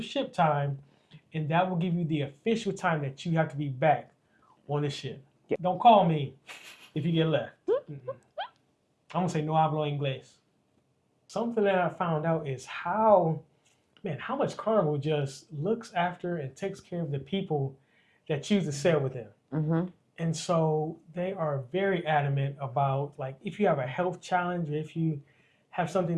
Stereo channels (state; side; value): identical; both; correlation 1.00